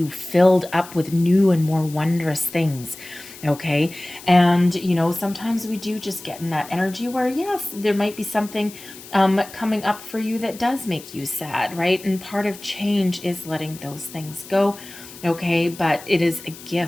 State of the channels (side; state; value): left; noise; hiss, 17 dB below the sound